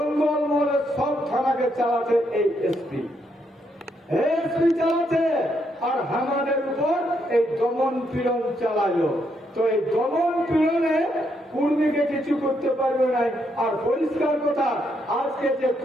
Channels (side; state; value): both; normal; correlation 0.77